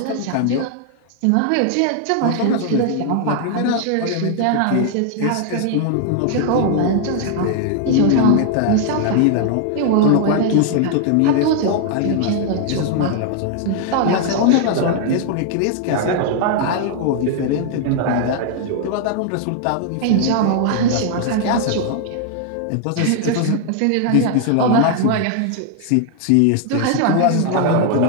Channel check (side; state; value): both; different; correlation 0.00